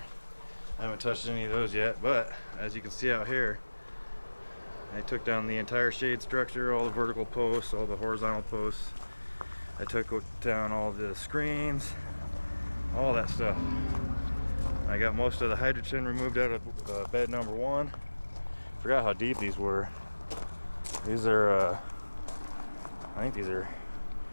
haven't touched any of those yet, but as you can see out here, I took down the entire shade structure, all the vertical posts, all the horizontal posts. I took down all the screens, all that stuff. I got most of the hydrogen removed out of bed number 1. Forgot how deep these were. These are, I think these are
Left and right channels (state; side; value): inverted; both; correlation -1.00